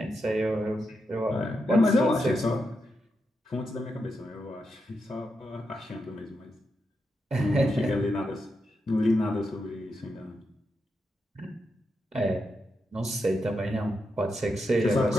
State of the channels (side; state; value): both; normal; correlation 0.85